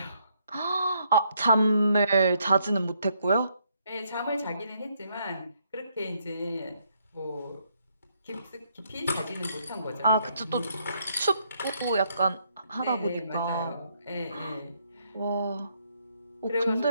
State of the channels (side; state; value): both; inverted; correlation -0.73